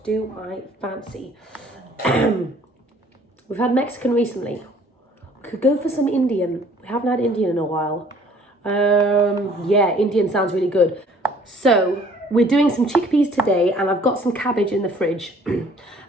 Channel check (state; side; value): normal; both; correlation 0.56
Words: do I fancy? We've had Mexican recently. We could go for some Indian. We haven't had Indian in a while. Yeah, Indian sounds really good. So we're doing some chickpeas today, and I've got some cabbage in the fridge.